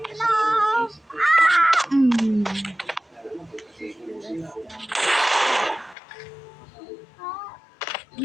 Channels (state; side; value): drops out; right; at 6.0 s